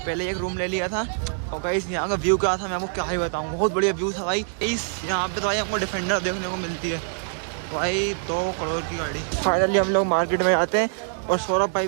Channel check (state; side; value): silent; left; digital silence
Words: पहले एक रूम ले लिया था। और गाइस यहाँ का व्यू क्या था मैं आपको क्या ही बताऊँ, बहुत बढ़िया व्यू था भाई। इस यहाँ पे तो भाई हमको डिफेंडर देखने को मिलती है भाई, 2 करोड़ की गाड़ी। फाइनली हम लोग मार्केट में आते हैं और सौरभ भाई